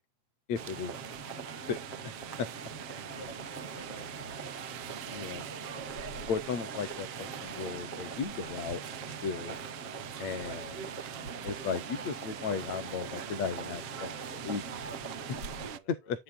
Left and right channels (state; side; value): late; right; 7.6 ms